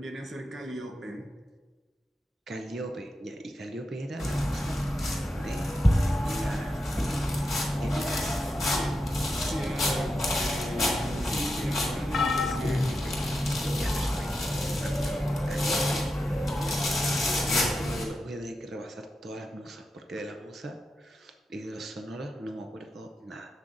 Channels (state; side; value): normal; both; correlation 0.87